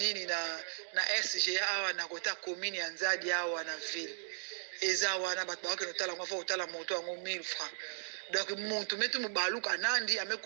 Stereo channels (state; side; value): silent; left; digital silence